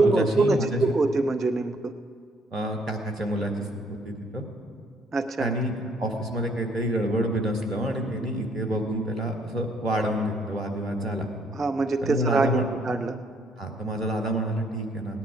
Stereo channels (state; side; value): normal; both; correlation 0.66